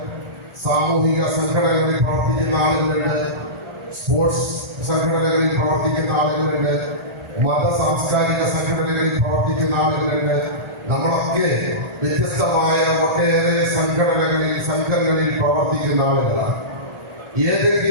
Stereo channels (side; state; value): left; late; 1.4 ms